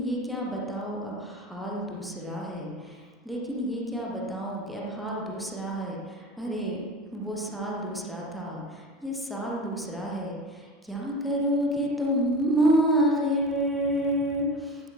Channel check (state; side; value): normal; both; correlation 0.31